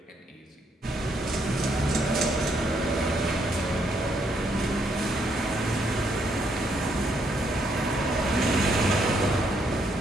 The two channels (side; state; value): both; normal; correlation 0.73